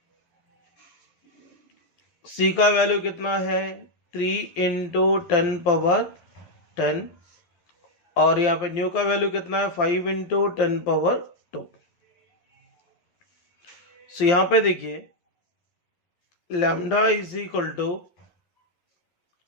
c का वैल्यू कितना है 3 इंटू 10⁻10, और यहाँ पे न्यू का वैल्यू कितना है 5 इंटू 10⁻2। सो यहाँ पे देखिए लैम्डा इज इक्वल टू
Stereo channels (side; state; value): right; late; 12 ms